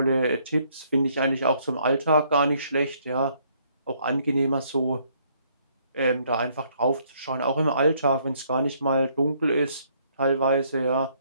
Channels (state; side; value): inverted; both; correlation -0.67